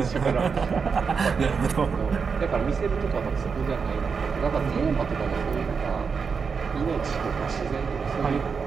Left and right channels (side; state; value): left; quieter; 5.6 dB